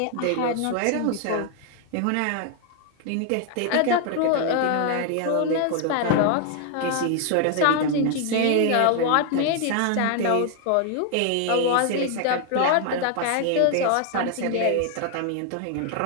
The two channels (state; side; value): different; both; correlation 0.00